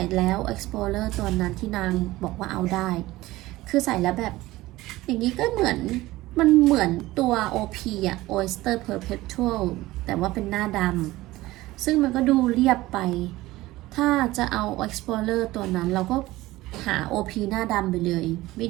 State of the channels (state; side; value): quieter; left; 18.0 dB